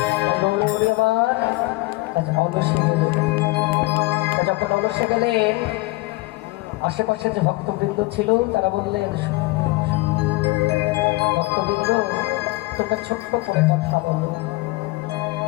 অলসে গেলেন। যখন অলসে গেলেন আশেপাশে যে ভক্তবৃন্দ ছিল তারা বললেন, ভক্তবৃন্দ তোমরা ছোট্ট করে কথা বলো,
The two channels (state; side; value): quieter; right; 22.2 dB